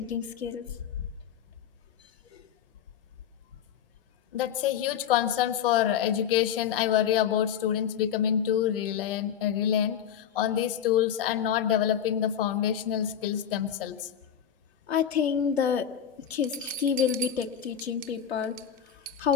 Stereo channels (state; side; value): quieter; right; 9.0 dB